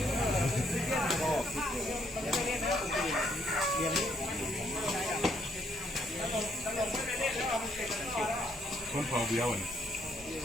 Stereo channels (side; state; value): both; normal; correlation 0.70